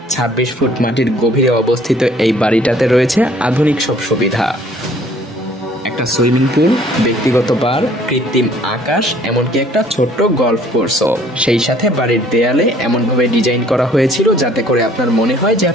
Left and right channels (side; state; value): both; normal; correlation 0.57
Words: 26 ফুট মাটির গভীরে অবস্থিত এই বাড়িটাতে রয়েছে আধুনিক সব সুবিধা। এক একটা সুইমিং পুল, ব্যক্তিগত বার, কৃত্রিম আকাশ, এমনকি একটা ছোট্ট গলফ কোর্সও। সেই সাথে বাড়ির দেয়ালে এমনভাবে ডিজাইন করা হয়েছিল যাতে করে আপনার মনে হয় যে